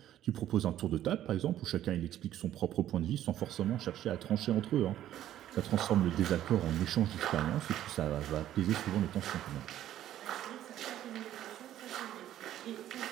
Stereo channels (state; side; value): quieter; left; 12.3 dB